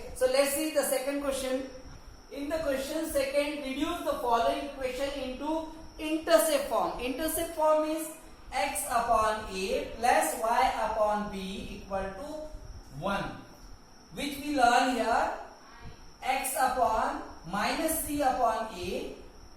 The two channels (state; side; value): identical; both; correlation 1.00